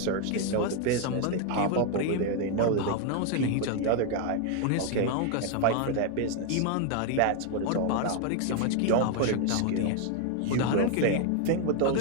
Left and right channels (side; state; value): both; different; correlation 0.01